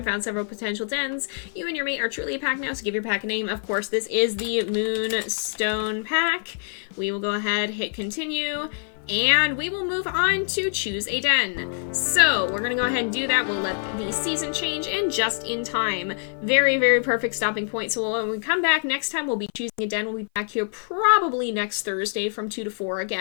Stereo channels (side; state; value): right; silent; 55 dB below the other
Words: found several potential dens. You and your mate are truly a pack now, so give your pack a name. Of course, this is the Moonstone pack. We will go ahead, hit continue, and we will move on to choose a den. So we're gonna go ahead and do that. We'll let the season change and just in time. Very, very perfect stopping point. So when we come back next time, we'll be choosing a den. We'll be back here probably next Thursday from 2 to 4